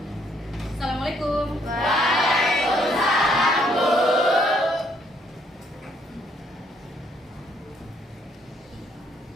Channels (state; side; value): normal; both; correlation 0.68